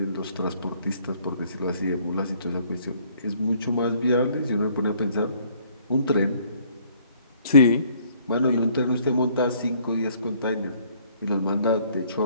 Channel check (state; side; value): inverted; both; correlation -0.62